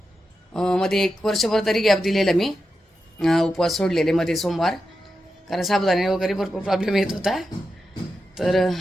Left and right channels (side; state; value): both; normal; correlation 0.89